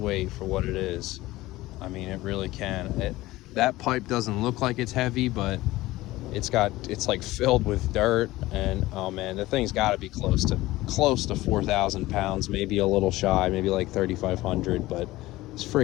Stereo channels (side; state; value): right; quieter; 17.9 dB